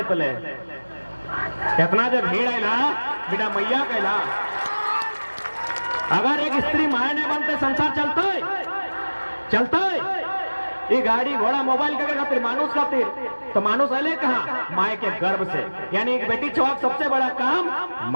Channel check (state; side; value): inverted; both; correlation -1.00